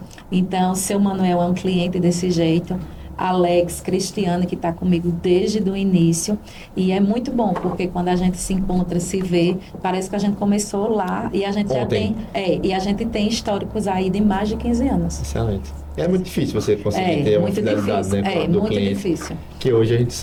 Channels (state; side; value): identical; both; correlation 1.00